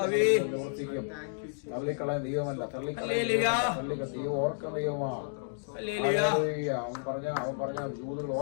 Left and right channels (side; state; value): right; silent; digital silence